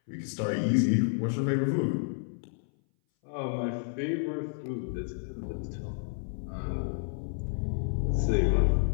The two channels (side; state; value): right; silent; 58 dB below the other